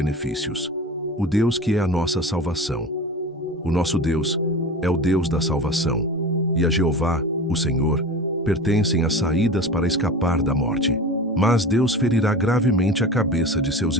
O Deus que é a nossa salvação. O nosso Deus é o Deus da salvação, e a Jeová, o Senhor, pertencem as saídas para escapar da morte. Mas Deus ferirá gravemente a cabeça de seus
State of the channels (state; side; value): normal; both; correlation 0.32